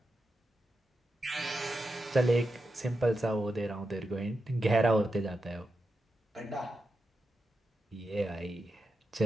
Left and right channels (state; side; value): normal; both; correlation 0.88